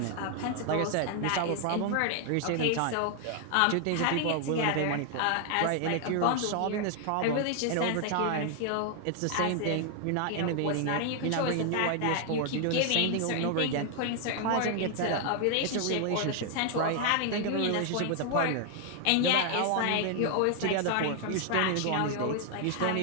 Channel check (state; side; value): different; both; correlation 0.00